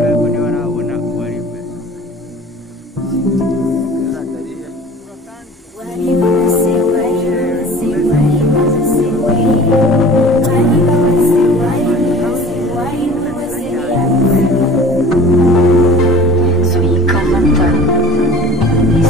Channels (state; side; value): normal; both; correlation 0.44